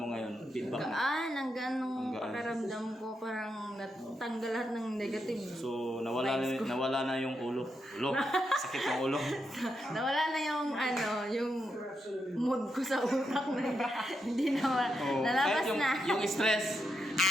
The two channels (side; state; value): both; normal; correlation 0.83